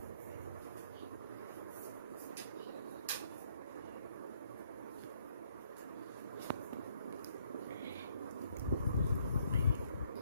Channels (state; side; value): inverted; both; correlation -0.68